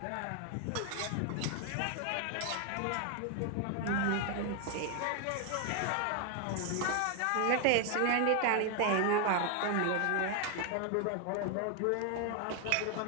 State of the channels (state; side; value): different; both; correlation 0.00